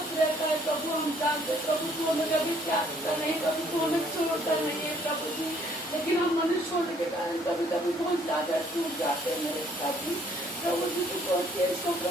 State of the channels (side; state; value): both; normal; correlation 0.63